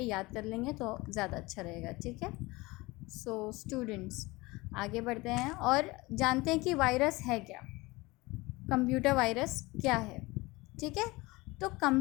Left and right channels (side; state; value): right; quieter; 22.2 dB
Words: याद कर लेंगे तो ज़्यादा अच्छा रहेगा। ठीक है, सो स्टूडेंट्स आगे बढ़ते हैं और जानते हैं कि वायरस है क्या, कंप्यूटर वायरस क्या है। ठीक है, तो